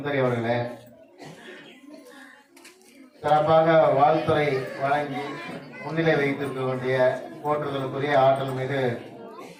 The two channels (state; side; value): identical; both; correlation 1.00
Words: அவர்களே, சிறப்பாக வாழ்த்துறை வழங்கி முன்னிலை வைத்திருக்கக்கூடிய போற்றுதலுக்குரிய ஆற்றல் மீது